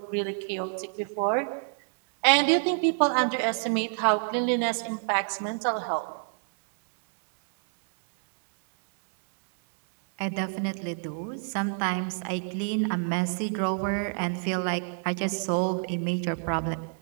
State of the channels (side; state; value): left; silent; 58 dB below the other